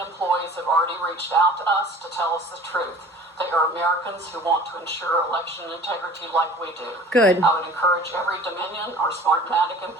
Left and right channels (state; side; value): normal; both; correlation 0.45